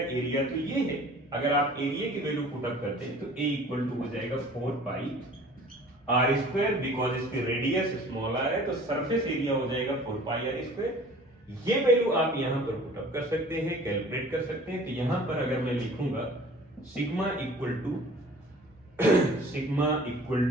एरिया तो ये है। अगर आप एरिया की वैल्यू पुट अप करते हैं तो A इक्वल टू हो जाएगा 4 पाई r स्क्वायर, बिकॉज इसकी रेडियस स्मॉल r है, तो सरफेस एरिया हो जाएगा 4 पाई r स्क्वायर। ये वैल्यू आप यहां पर पुट अप कर सकते हैं, कैलकुलेट कर सकते हैं। तो यहां पर अगर मैं लिखूंगा sigma equal to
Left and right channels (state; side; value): normal; both; correlation 0.47